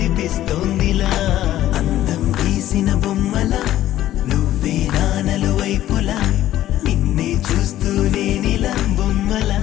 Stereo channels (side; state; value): right; quieter; 13.3 dB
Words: అందం గీసిన బొమ్మల నువ్వే నానలు వైపులా నిన్నే చూస్తూనే నీలా బొమ్మలా